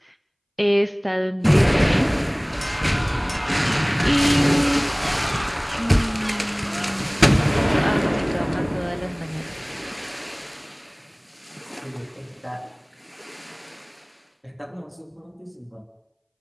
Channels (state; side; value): identical; both; correlation 1.00